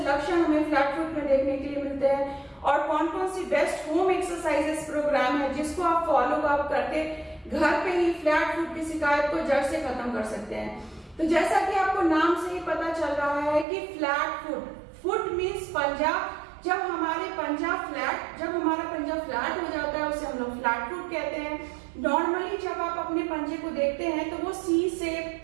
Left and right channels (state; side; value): drops out; left; at 13.7 s